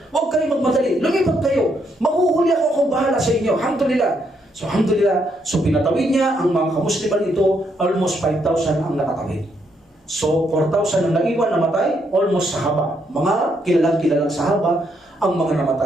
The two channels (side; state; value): both; normal; correlation 0.75